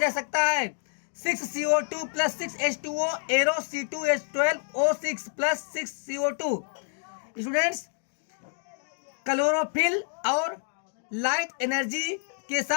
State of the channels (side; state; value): right; silent; 58 dB below the other